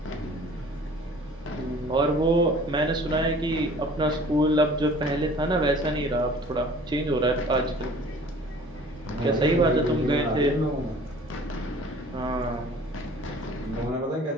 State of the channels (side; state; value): both; normal; correlation 0.49